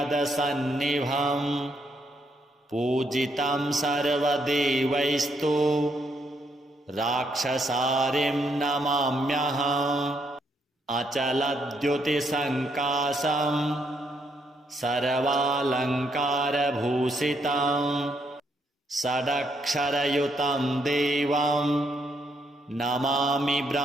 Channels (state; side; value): normal; both; correlation 0.75